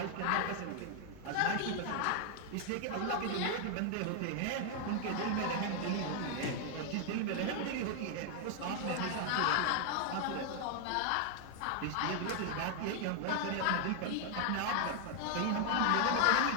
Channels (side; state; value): both; different; correlation 0.00